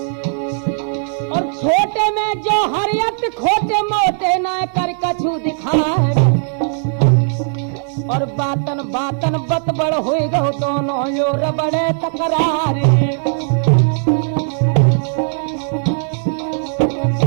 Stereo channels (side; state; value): left; silent; 68 dB below the other